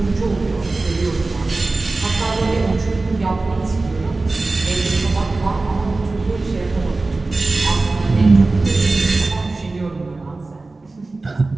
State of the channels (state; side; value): quieter; left; 3.3 dB